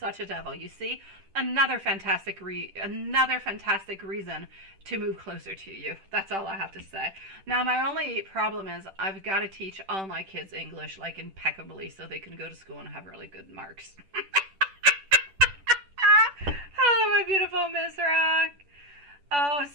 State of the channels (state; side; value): late; left; 10 ms